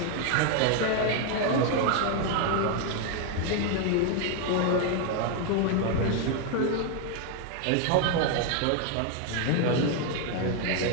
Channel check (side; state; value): both; different; correlation 0.01